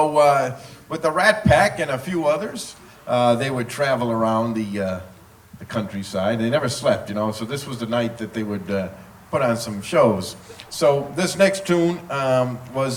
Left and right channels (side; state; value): both; identical; correlation 1.00